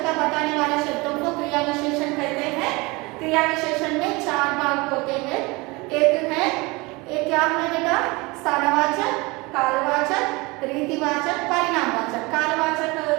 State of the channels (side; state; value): left; quieter; 24.6 dB